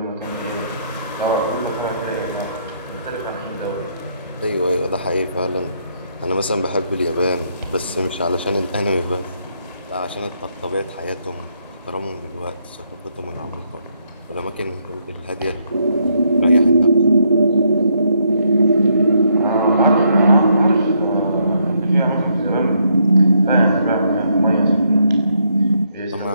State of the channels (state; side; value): inverted; both; correlation -0.74